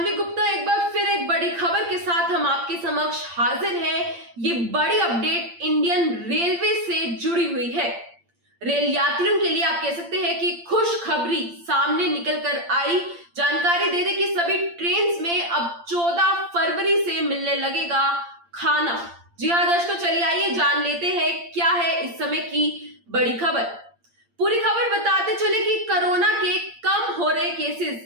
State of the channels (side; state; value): left; late; 8.7 ms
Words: गुप्ता एक बार फिर एक बड़ी खबर के साथ हम आपके समक्ष हाजिर हैं। ये बड़ी अपडेट इंडियन रेलवे से जुड़ी हुई है। रेल यात्रियों के लिए आप कह सकते हैं कि खुशखबरी सामने निकल कर आई। जानकारी दे दें कि सभी ट्रेन में अब 14 फरवरी से मिलने लगेगा खाना। जी हाँ दर्शकों, चलिए आइए जान लेते हैं क्या है इस समय की बड़ी खबर। पूरी खबर बताते चले कि कोरोना के कम हो रहे